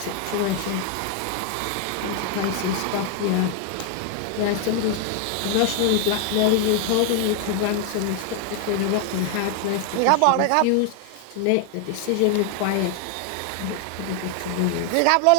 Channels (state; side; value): different; both; correlation 0.00